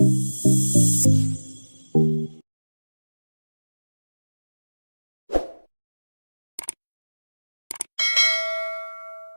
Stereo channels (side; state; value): both; inverted; correlation -1.00